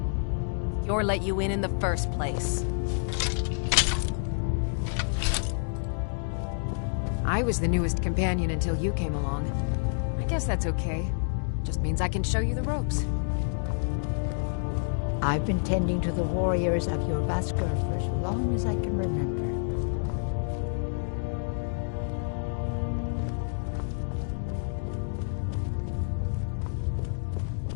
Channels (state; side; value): silent; right; digital silence